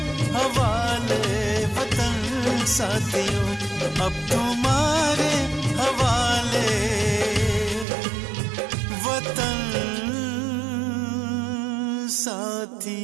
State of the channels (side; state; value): left; drops out; at 7.9 s